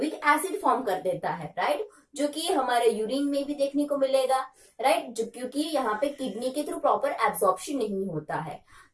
एसिड फॉर्म कर देता है, राइट, जो कि हमारे यूरिन में भी देखने को मिलेगा, राइट, जो क्योंकि यहाँ पे किडनी के थ्रू प्रॉपर एब्जॉर्प्शन नहीं होता है।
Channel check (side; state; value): both; identical; correlation 1.00